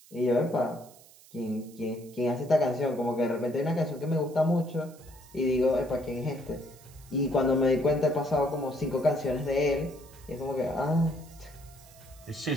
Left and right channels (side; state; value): right; noise; hiss, 24 dB below the sound